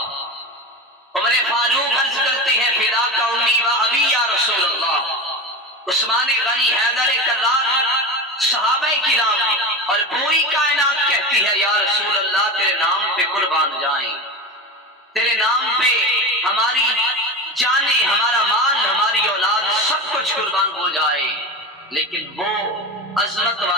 عمر فاروق عرض کرتے ہیں فداک امی و ابی یا رسول اللہ. عثمان غنی حیدر کرار صحابہ کرام اور پوری کائنات کہتی ہے یا رسول اللہ تیرے نام پہ قربان جائیں، تیرے نام پہ ہماری جانیں، ہمارا مال، ہماری اولاد سب کچھ قربان ہو جائے. لیکن وہ عظمت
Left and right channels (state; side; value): normal; both; correlation 0.25